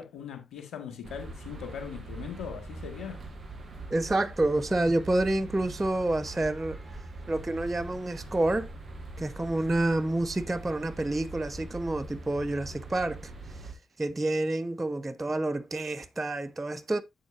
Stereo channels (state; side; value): normal; both; correlation 0.95